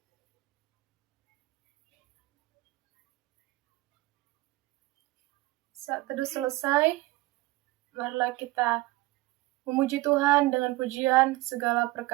Saat teduh selesai, marilah kita memuji Tuhan dengan pujian segala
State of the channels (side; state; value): left; quieter; 19.5 dB